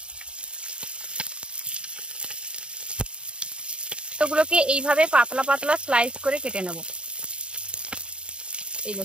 টমেটোগুলোকে এইভাবে পাতলা পাতলা স্লাইস করে কেটে নেব। এই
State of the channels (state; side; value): late; left; 0.054 ms